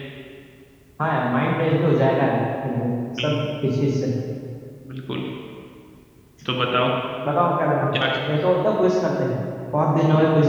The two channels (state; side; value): identical; both; correlation 1.00